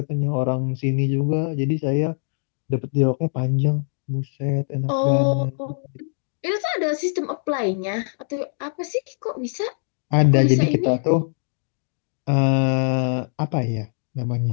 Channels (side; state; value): right; silent; digital silence